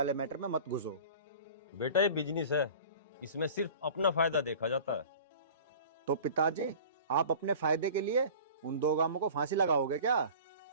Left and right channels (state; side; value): inverted; both; correlation -0.41